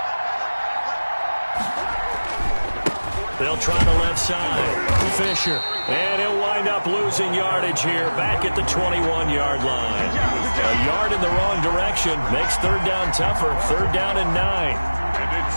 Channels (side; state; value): both; inverted; correlation -1.00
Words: They'll try the left side. Fisher. And he'll wind up losing yardage here back at the 21-yard line. A yard in the wrong direction makes 3rd down tougher. 3rd down and 9. And